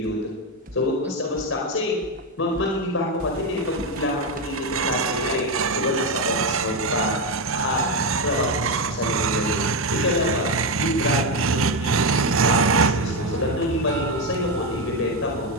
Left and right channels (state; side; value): normal; both; correlation 0.08